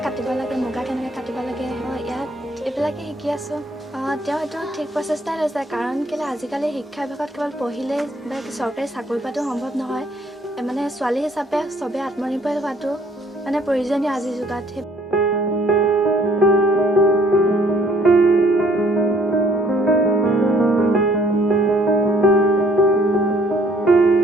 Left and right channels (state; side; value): normal; both; correlation 0.61